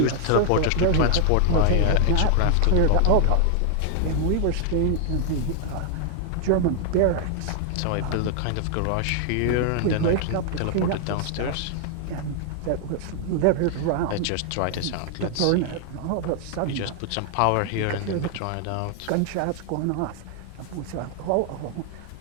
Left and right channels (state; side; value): different; both; correlation 0.00